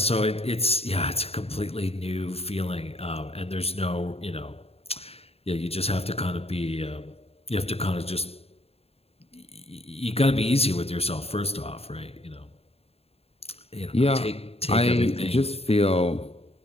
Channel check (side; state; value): right; late; 0.29 ms